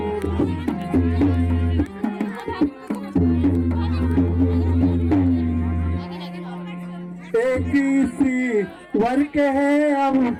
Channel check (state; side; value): identical; both; correlation 1.00